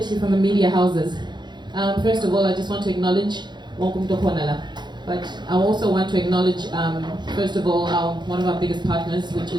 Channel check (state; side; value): late; left; 0.21 ms